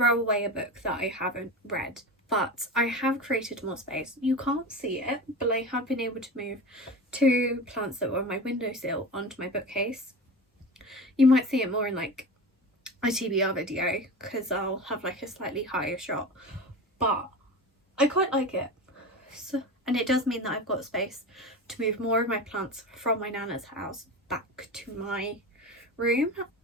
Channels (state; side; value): normal; both; correlation 0.29